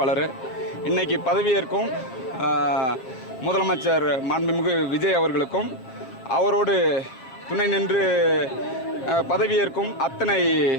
இன்றைக்கி பதவியேற்கும் முதலமைச்சர் மாண்புமிகு விஜய் அவர்களுக்கும் அவரோடு துணை நின்று பதவியேற்கும் அத்தனை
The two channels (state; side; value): late; right; 7.7 ms